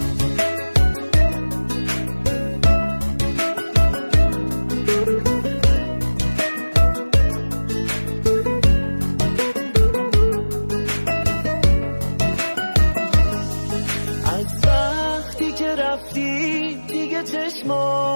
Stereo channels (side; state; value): both; inverted; correlation -1.00